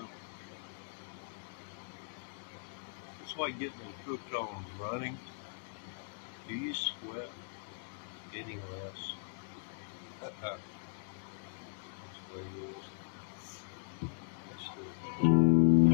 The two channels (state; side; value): silent; right; digital silence